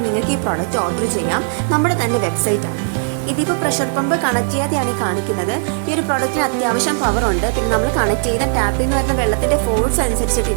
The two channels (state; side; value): silent; left; 67 dB below the other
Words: നിങ്ങൾക്ക് ഈ പ്രോഡക്റ്റ് ഓർഡർ ചെയ്യാം. നമ്മുടെ തന്നെ വെബ്സൈറ്റാണ്. ഇതിപ്പോൾ പ്രഷർ പമ്പ് കണക്ട് ചെയ്യാതെയാണ് ഈ കാണിക്കുന്നത്. ഈ ഒരു പ്രോഡക്റ്റിന് അത്യാവശ്യം പവർ ഉണ്ട്. പിന്നെ നമ്മൾ കണക്ട് ചെയ്യുന്ന ടാപ്പിൽ നിന്ന് വരുന്ന വെള്ളത്തിന്റെ ഫോഴ്സ്